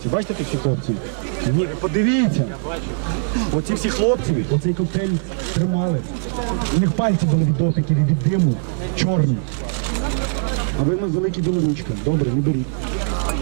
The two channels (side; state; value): left; silent; digital silence